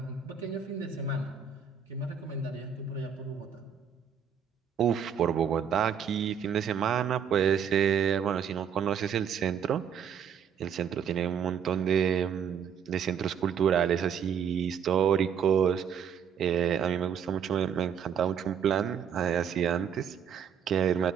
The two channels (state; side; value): quieter; left; 7.8 dB